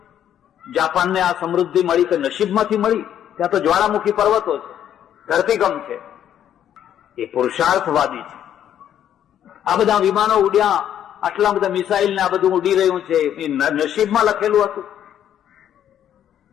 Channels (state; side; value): quieter; right; 10.3 dB